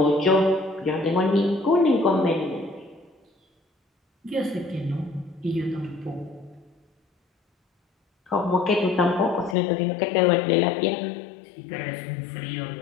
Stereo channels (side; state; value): right; drops out; at 9.6 s